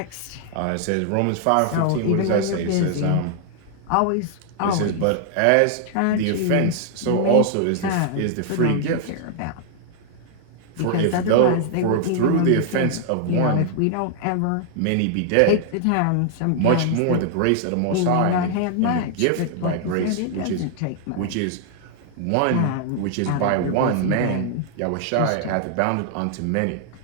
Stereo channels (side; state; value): both; different; correlation 0.00